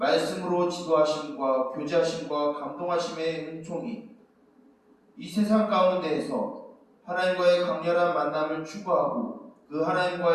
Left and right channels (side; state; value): both; identical; correlation 1.00